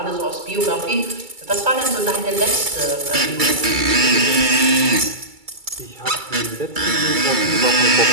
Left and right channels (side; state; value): left; late; 2.3 ms